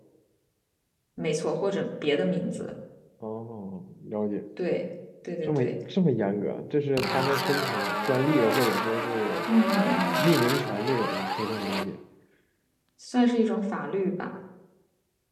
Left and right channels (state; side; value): identical; both; correlation 1.00